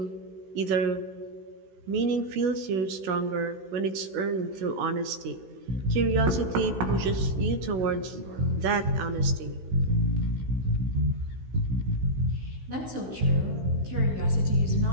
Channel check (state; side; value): late; left; 16 ms